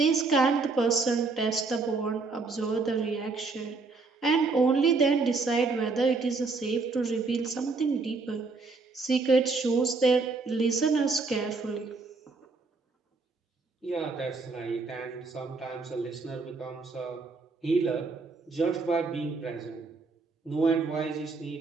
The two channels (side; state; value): left; quieter; 4.1 dB